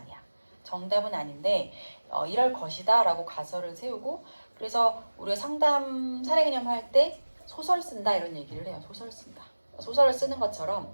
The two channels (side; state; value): both; inverted; correlation -1.00